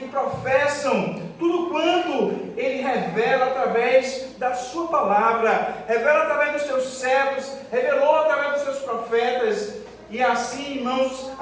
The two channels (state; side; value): identical; both; correlation 1.00